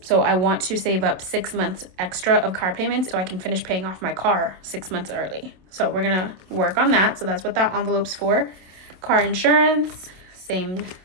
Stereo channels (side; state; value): left; late; 27 ms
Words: I want to save up 6 months extra of car payments so I can finish paying off my car 6 months early. So we're going to work on that. So that's what that envelope's for. Car insurance, same,